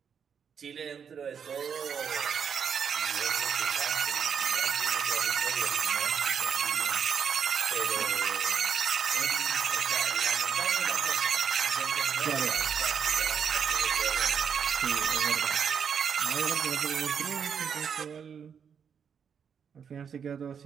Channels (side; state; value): left; quieter; 7.2 dB